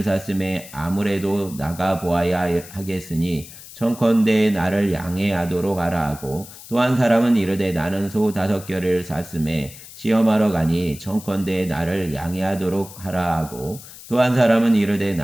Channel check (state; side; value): noise; left; hiss, 17 dB below the sound